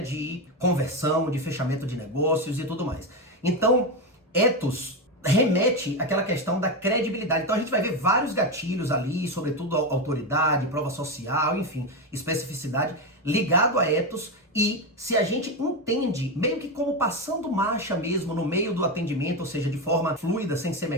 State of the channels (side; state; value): both; normal; correlation 0.12